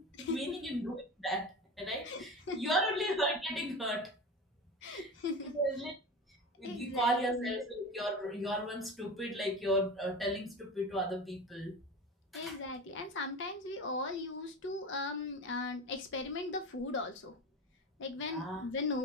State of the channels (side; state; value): both; normal; correlation 0.29